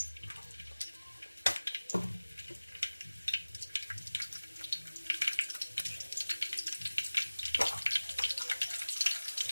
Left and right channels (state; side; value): inverted; both; correlation -1.00